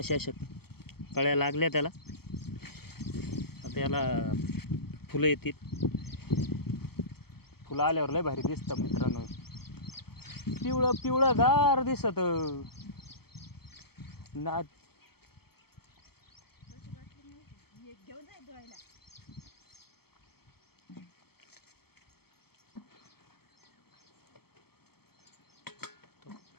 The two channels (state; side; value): late; right; 0.96 ms